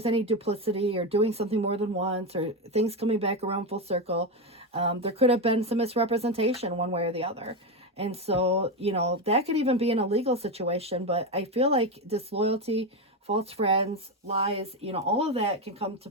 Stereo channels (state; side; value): normal; both; correlation 0.12